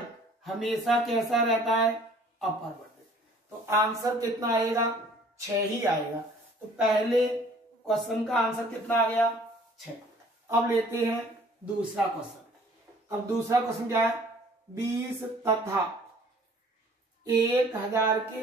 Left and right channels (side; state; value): both; normal; correlation 0.54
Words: हमेशा कैसा रहता है, अपरिवर्तित। तो आंसर कितना आएगा, 6 ही आएगा। तो पहले क्वेश्चन का आंसर कितना आ गया 6। अब लेते हैं दूसरा क्वेश्चन। अब दूसरा क्वेश्चन क्या है, 20 तथा 1000